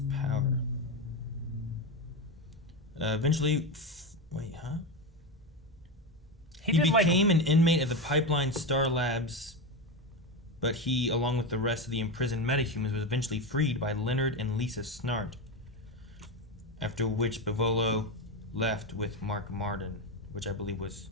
power? Eventually, He became an inmate of the Pipeline Star Labs, but he, along with the rest of the imprisoned metahumans, was eventually freed by Leonard and Lisa Snart. After which Bivolo left with Mark Martin, which I believe was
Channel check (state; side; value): normal; both; correlation 0.15